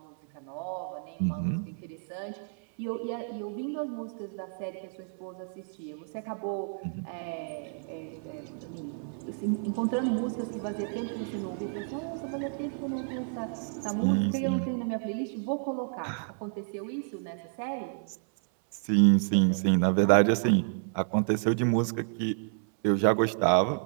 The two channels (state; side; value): silent; left; 58 dB below the other